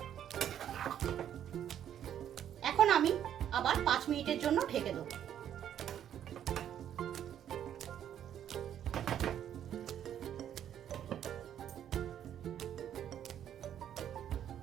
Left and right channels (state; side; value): quieter; left; 10.1 dB